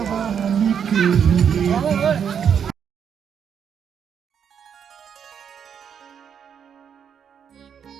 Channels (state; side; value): quieter; left; 7.8 dB